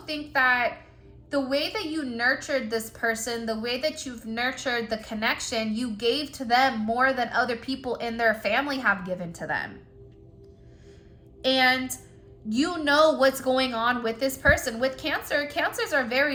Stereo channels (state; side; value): identical; both; correlation 1.00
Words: think that the way that you nurtured this person, the way that you've nurtured the connection, you gave to them more than other people in their family have given to them. And you know what's going on with this person. With Cancer, Cancers are